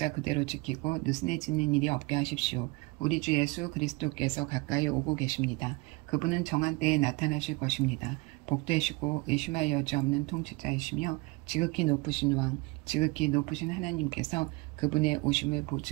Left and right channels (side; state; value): left; quieter; 25.4 dB